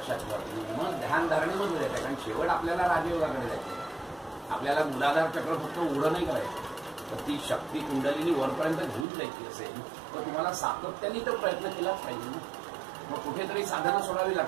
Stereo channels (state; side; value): drops out; left; at 9.1 s